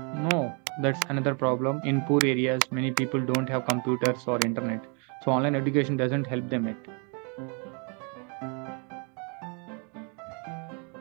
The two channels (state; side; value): quieter; left; 36.8 dB